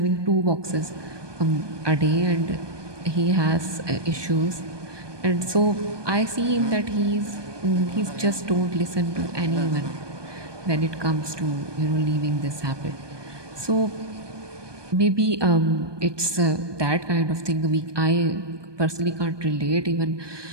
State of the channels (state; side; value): late; left; 1.2 ms